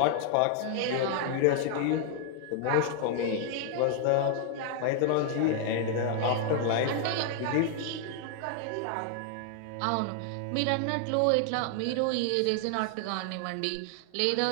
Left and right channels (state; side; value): different; both; correlation 0.00